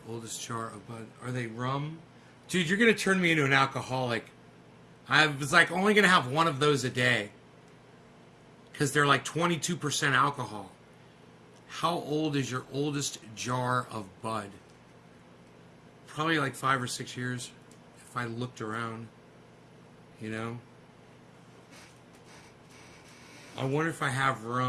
oldest jar of bud. Are they rum? Dude, you're going to turn me into an alcoholic. I was like only going to have one of those a day. Because they're like 22% alcohol. How old is your oldest jar of Bud? Probably like 5 or 6 years, if I looked around, you know? I wonder if I have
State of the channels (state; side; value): identical; both; correlation 1.00